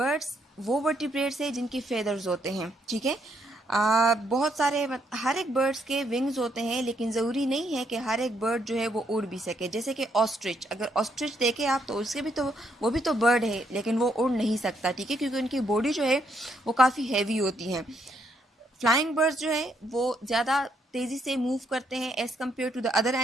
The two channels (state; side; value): normal; both; correlation 0.74